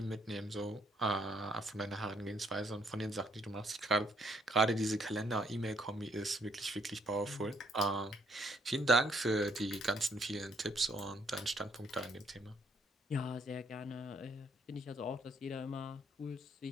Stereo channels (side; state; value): both; normal; correlation 0.69